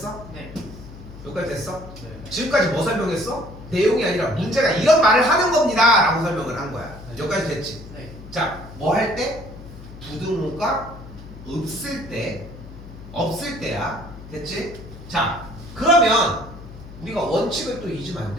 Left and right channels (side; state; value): left; noise; hum, 16 dB below the sound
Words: 네. 여기까지 됐어? 네. 지금까지 뭐 설명했어? 내용이 아니라 문제가 이런 말을 하는 겁니다 라고 설명을 한 거야. 네. 여기까지 됐지? 네. 자, 뭐 할 때? 부등호가 없을 때야. 됐지? 자, 그러면 우리가 원칙을 또 잊으면 안